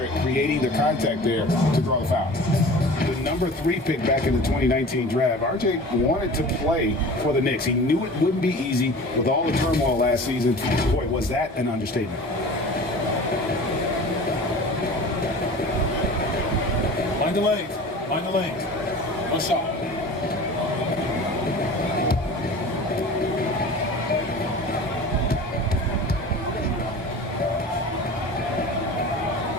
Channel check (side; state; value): both; normal; correlation 0.39